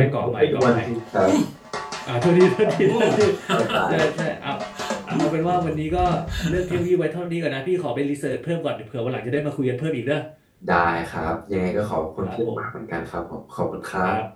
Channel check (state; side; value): identical; both; correlation 1.00